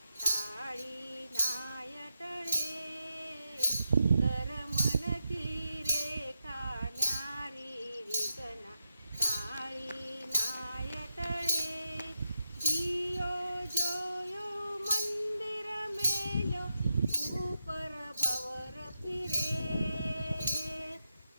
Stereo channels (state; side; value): inverted; both; correlation -0.87